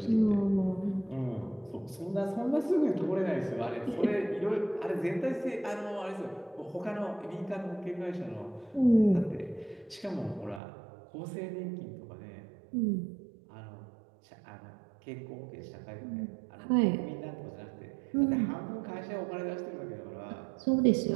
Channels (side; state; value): left; drops out; at 10.6 s